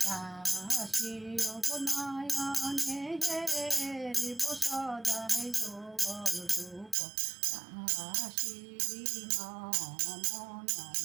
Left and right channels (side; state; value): left; drops out; at 7.0 s